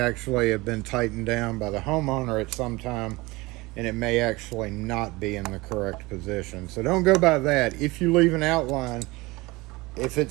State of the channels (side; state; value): left; quieter; 22.3 dB